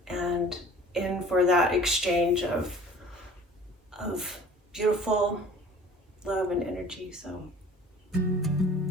and in for that exchange of beautiful love and energy. So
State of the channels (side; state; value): both; normal; correlation 0.47